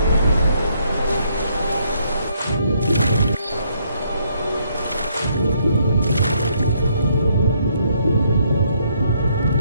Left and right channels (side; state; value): both; inverted; correlation -0.71